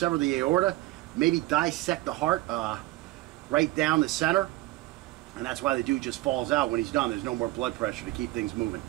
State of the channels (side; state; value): left; quieter; 18.6 dB